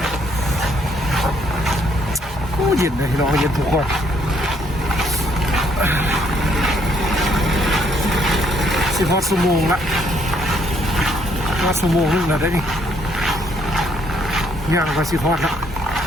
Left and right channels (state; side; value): normal; both; correlation 0.68